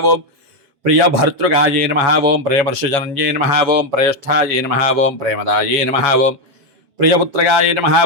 ओम प्रियभर्तृगाय नमः ओम प्रेमर्षजनन्ये नमः ओम प्रेष्ठाय नमः ओम प्रेमदाय नमः ओम प्रियपुत्रगाय नमः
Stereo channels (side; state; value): left; late; 7.2 ms